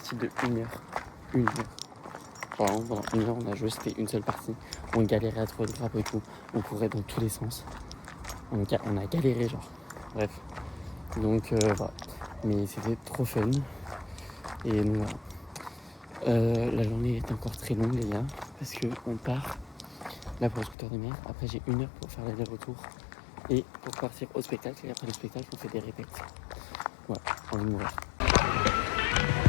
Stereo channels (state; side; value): drops out; right; at 20.8 s